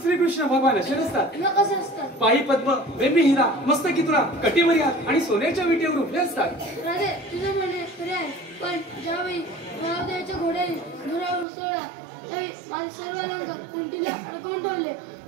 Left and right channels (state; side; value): drops out; left; at 11.5 s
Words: श्रीकृष्ण भगवान असे नसतात. मग कसे असतात? पायी पद्म, वेमी हिरा, मस्तकी तुरा, कटीवर हात आणि सोन्याच्या विटेवर उभे असतात. राधे तुझे म्हणणे खरे आहे, पण ज्यावेळी महादेवाच्या घोड्याने धुरावर उसळला त्यावेळी माझे सर्व अलंकार कुंटीला अडकवून ठेवले